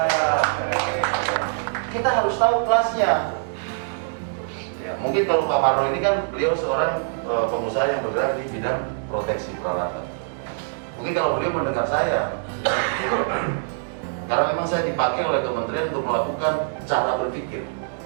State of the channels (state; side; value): silent; left; 63 dB below the other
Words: Kita harus tahu kelasnya. Ya, mungkin kalau Pak Marlo ini kan beliau seorang pengusaha yang bergerak di bidang proteksi peralatan. Mungkin kalau beliau mendengar saya, karena memang saya dipakai oleh kementerian untuk melakukan cara berpikir.